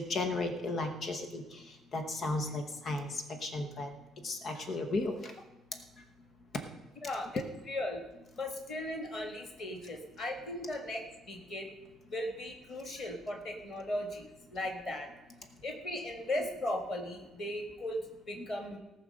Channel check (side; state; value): both; normal; correlation 0.72